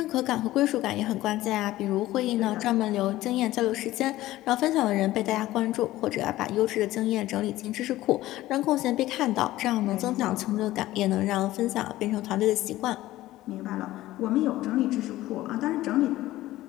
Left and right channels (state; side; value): quieter; right; 16.0 dB